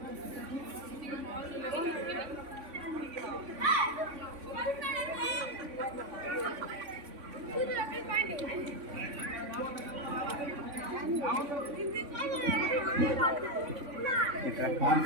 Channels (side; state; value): left; late; 3.5 ms